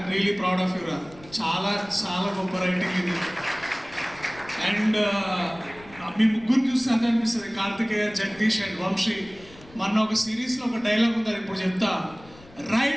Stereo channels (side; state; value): left; noise; rumble, 22 dB below the sound